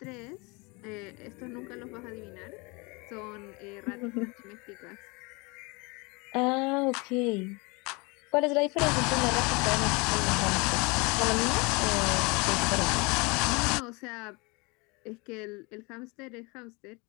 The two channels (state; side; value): quieter; right; 27.9 dB